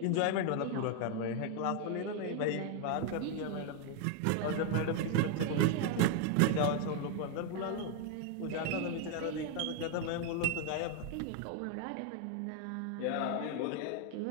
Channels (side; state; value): both; different; correlation 0.01